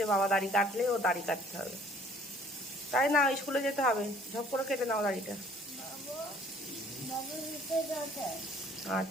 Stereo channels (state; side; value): normal; both; correlation 0.56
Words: বাবা দাড়ি কাটলে ও দাড়ি কাটতে হবে, তাই না? স্কুলে যেতে হবে, ঝপ করে কেটে নাও দাড়িটা।